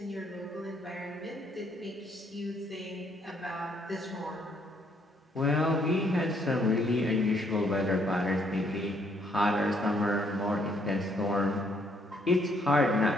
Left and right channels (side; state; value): both; normal; correlation 0.69